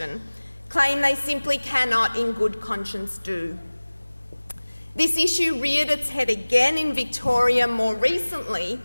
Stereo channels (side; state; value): both; inverted; correlation -1.00